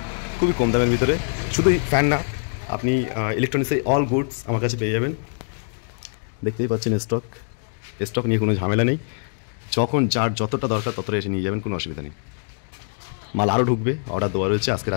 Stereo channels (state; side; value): silent; right; digital silence